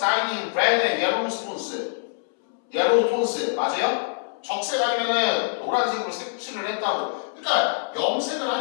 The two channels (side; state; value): right; silent; 62 dB below the other